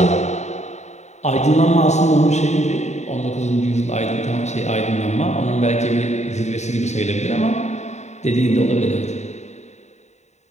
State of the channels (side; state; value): right; late; 0.33 ms